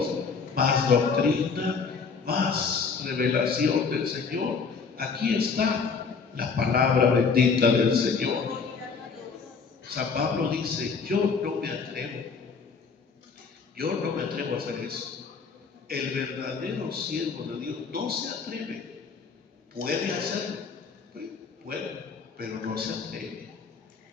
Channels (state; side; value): quieter; right; 5.2 dB